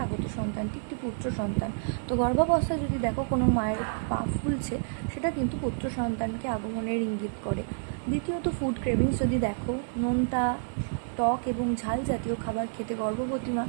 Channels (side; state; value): left; silent; digital silence